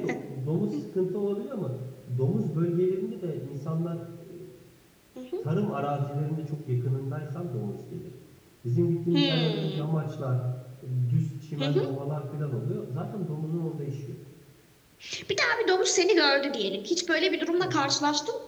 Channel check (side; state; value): both; identical; correlation 1.00